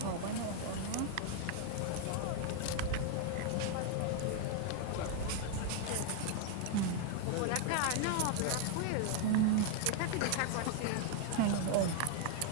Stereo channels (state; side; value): different; both; correlation 0.00